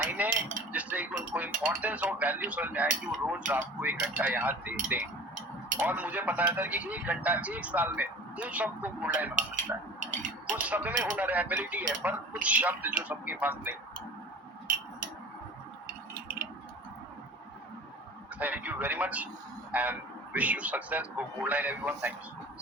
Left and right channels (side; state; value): both; normal; correlation 0.41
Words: जिससे उनको इंपॉर्टेंस और वैल्यू समझ में आए कि वो रोज रात को 1 घंटा यहाँ देते हैं। और मुझे पता है सर कि 1 घंटा 1 साल में उन सबको गोल्ड लाइन बना सकता है। कुछ सब में हुनर है, एबिलिटी है, पर कुछ शब्द जो सबके पास नहीं। Thank you very much and wish you success for gold line everyone. Thank you so much,